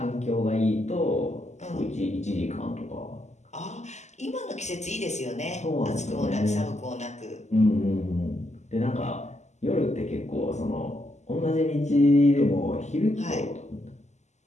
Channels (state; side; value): late; right; 0.33 ms